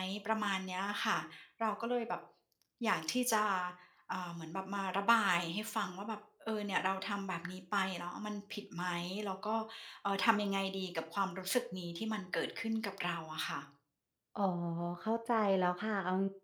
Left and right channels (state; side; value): identical; both; correlation 1.00